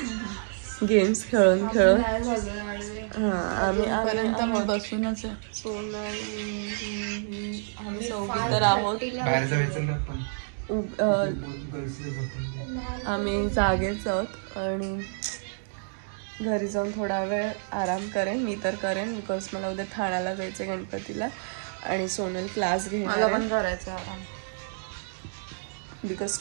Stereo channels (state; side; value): silent; left; digital silence